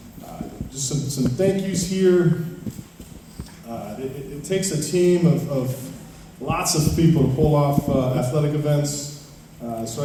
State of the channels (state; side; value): identical; both; correlation 1.00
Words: Just some thank yous here. It takes a team of lots of people to pull off athletic events. So